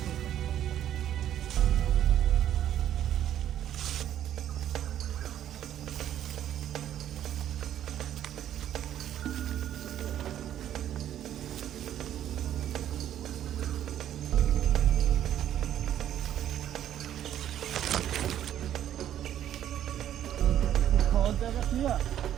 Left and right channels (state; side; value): quieter; left; 11.1 dB